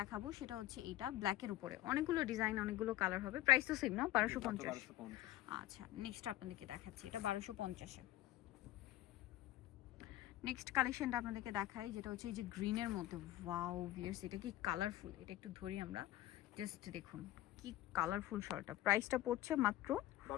দেখাবো সেটা হচ্ছে এইটা ব্ল্যাকের উপরে, অনেকগুলো ডিজাইন, অনেকগুলো কালার হবে। প্রাইস তো সেম না? 1250। আচ্ছা, নেক্সট আপনাদেরকে দেখাচ্ছি, এটা 1250-এ। নেক্সট কালেকশনটা আপনাদেরকে দেখাই, যেটা হচ্ছে এই যে গ্রিনের মধ্যে। ওয়াও ভিউয়ার্স, এটা কি কালারফুল, এটা একটু ধরি আমরা, জাস্ট দেখুন কি কালারফুল শলটা। প্রাইসটা পড়ছে মাত্র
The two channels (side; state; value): right; quieter; 15.0 dB